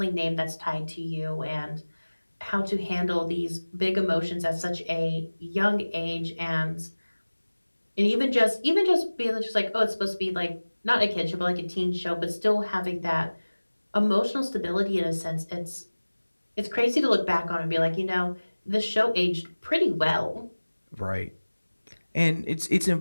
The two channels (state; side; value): inverted; both; correlation -1.00